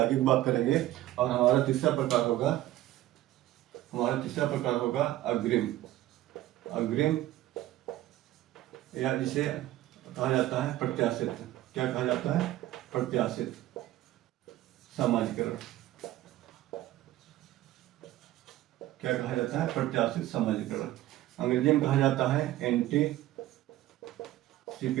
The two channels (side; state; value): left; quieter; 15.0 dB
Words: की बात करेंगे और हमारा तीसरा प्रकार होगा अग्रिम। अग्रिम या जिसे कहा जाता है प्रत्याशित। क्या कहा जाता है? प्रत्याशित सामाजिकरण। क्या कहा जाता है? प्रत्याशित सामाजिकरण। अंग्रेजी में कहा जाता है एंटीसिपेटरी